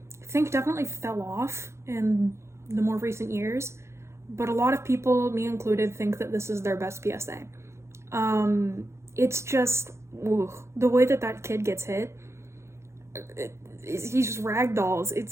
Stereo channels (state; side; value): late; left; 0.13 ms